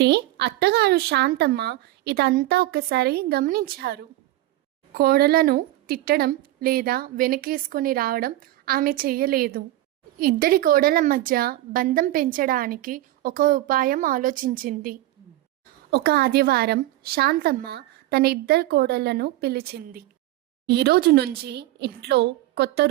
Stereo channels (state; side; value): quieter; left; 16.0 dB